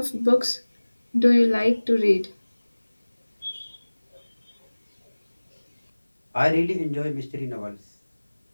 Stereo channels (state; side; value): inverted; both; correlation -1.00